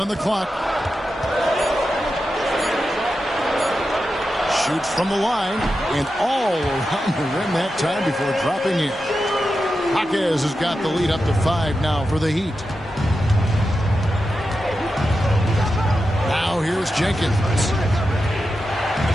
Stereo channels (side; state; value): both; normal; correlation 0.90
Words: the clock. Shoots from the line and all around the rim that time before dropping in. Jaquez has got the lead up to 5 now for the Heat. Now here's Jenkins.